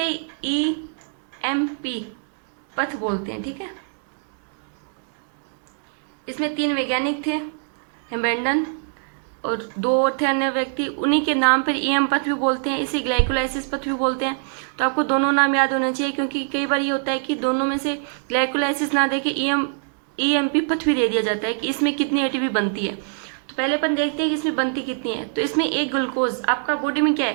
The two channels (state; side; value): silent; left; digital silence